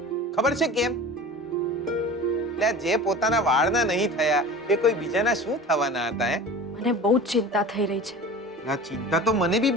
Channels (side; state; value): both; normal; correlation 0.37